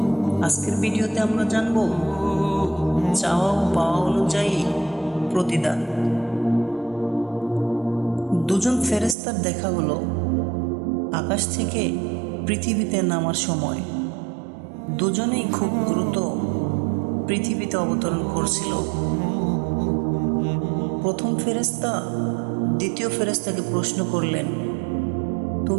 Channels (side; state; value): left; drops out; at 9.2 s